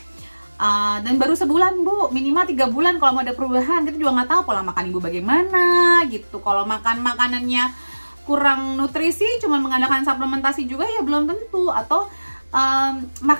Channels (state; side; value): inverted; both; correlation -1.00